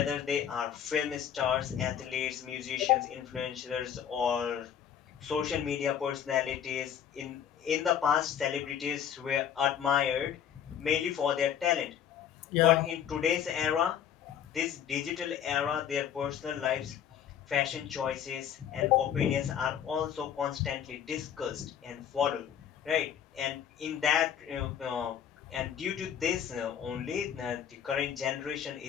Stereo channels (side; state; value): right; quieter; 9.0 dB